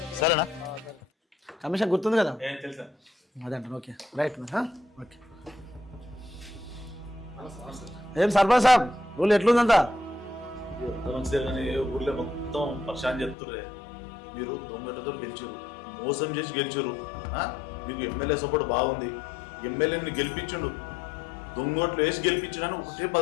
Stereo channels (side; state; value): right; drops out; at 13.4 s